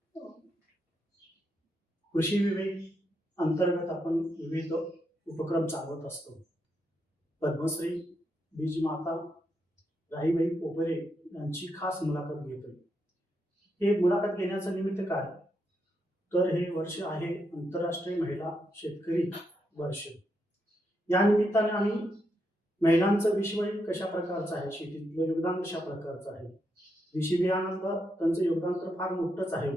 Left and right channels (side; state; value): both; normal; correlation 0.81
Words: कृषी विवेक अंतर्गत आपण विविध उपक्रम चालवत असतो. पद्मश्री बीजमाता राहीबाई पोपेरे यांची खास मुलाखत घेतोय. हे मुलाखत घेण्याचं निमित्त काय, तर हे वर्ष आहे आंतरराष्ट्रीय महिला शेतकरी वर्ष. या निमित्ताने आम्ही महिलांचं विश्व कशा प्रकारचं आहे, शेतीतलं योगदान कशा प्रकारचं आहे, देशी बियाणातलं त्यांचं योगदान तर फार मोठंच आहे